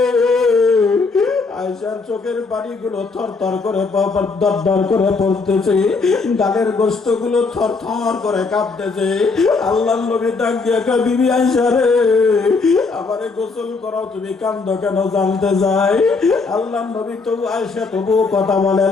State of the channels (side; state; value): right; quieter; 4.3 dB